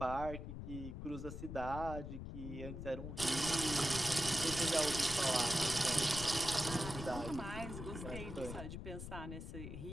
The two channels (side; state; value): left; noise; rumble, 7 dB below the sound